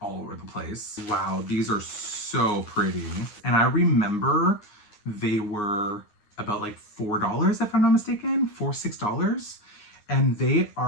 all over the place. Wow, these are so pretty. And I remember they were about like $4, if I'm not mistaken, $6. And they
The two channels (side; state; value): right; late; 9.6 ms